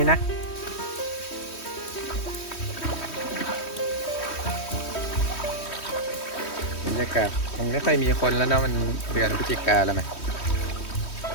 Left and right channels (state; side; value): late; right; 3.1 ms